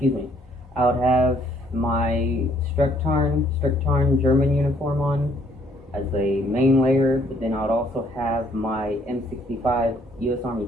me, I would have my Stricktarn German uniform on as a main layer, but then I would also have my M65 U.S. Army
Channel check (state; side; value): normal; both; correlation 0.65